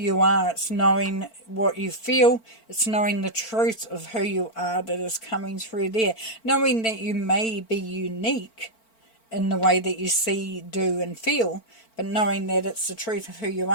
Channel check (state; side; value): late; right; 4.4 ms